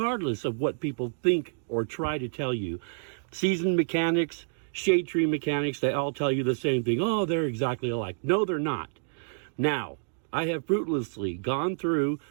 of what people think or try to tell you. Seasoned mechanics, shade tree mechanics, they all tell you the same thing. Oh, they're exactly alike. No, they're not. Now, I have fruitlessly gone through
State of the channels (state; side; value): silent; left; digital silence